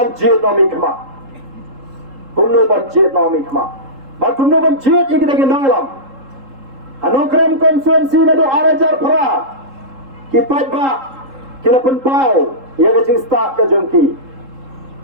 nami kema. Ba kumno banjit yang kita gendang alam. Anokram konstituensi na do arajar para kipat ba kila penpau ya kajing start ka jongki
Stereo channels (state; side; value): late; left; 3.7 ms